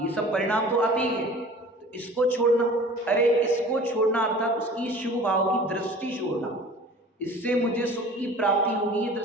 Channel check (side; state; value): both; normal; correlation 0.43